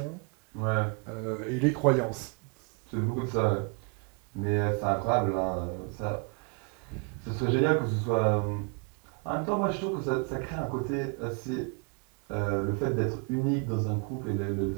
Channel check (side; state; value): left; quieter; 35.3 dB